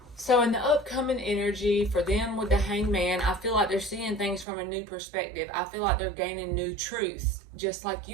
So in the upcoming energy for them with the Hangman, I feel like they're seeing things from a new perspective. I feel like they're gaining new truths. Just like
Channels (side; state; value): left; drops out; at 4.5 s